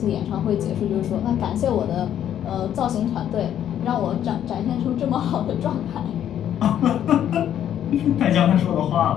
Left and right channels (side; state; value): right; quieter; 10.4 dB